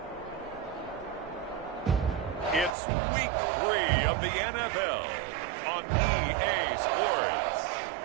it's Week 3 of the NFL on EA Sports.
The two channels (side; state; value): left; drops out; at 2.8 s